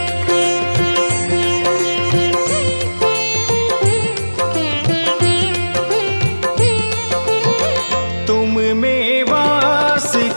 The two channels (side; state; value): both; inverted; correlation -1.00